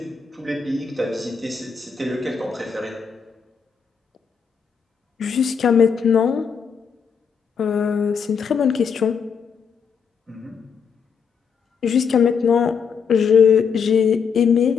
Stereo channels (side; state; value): right; quieter; 6.4 dB